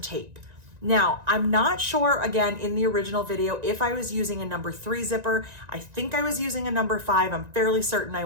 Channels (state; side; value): late; left; 1.9 ms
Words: Now, I'm not sure, again, in the original video, if I was using a number 3 zipper. I think I was using a number 5. I'm fairly certain I